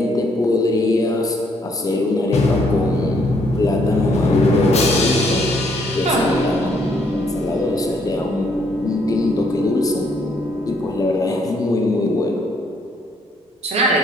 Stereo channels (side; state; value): both; normal; correlation 0.69